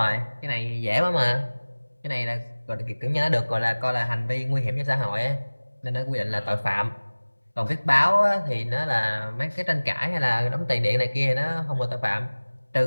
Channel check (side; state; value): both; inverted; correlation -1.00